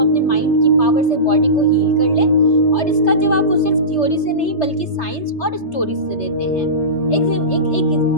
माइंड की पावर से बॉडी को हील कर लें? और इसका जवाब वो सिर्फ थ्योरी से नहीं बल्कि साइंस और स्टोरीज से देते हैं।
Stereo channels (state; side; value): late; right; 3.3 ms